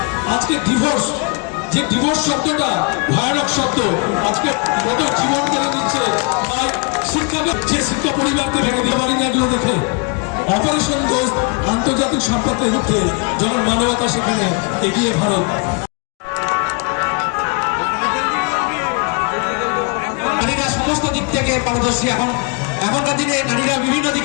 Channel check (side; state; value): right; quieter; 33.3 dB